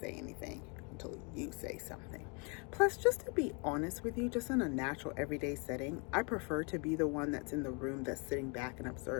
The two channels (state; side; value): quieter; right; 34.3 dB